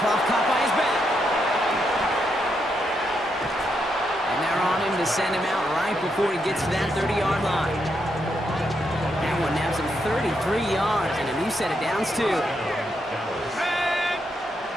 off caught by his back. And they're on him to send him out right before he gets to that 30-yard line. That one nabs him 33 yards and a new set of downs, too.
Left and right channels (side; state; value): both; normal; correlation 0.80